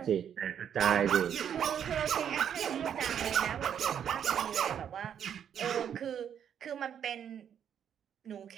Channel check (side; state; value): left; quieter; 8.8 dB